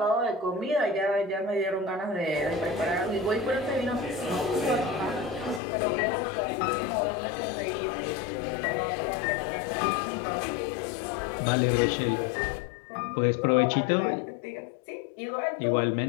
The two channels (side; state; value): right; drops out; at 5.6 s